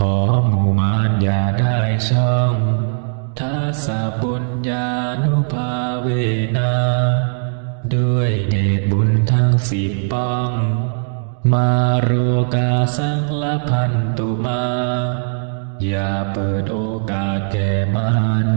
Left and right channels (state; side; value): silent; left; digital silence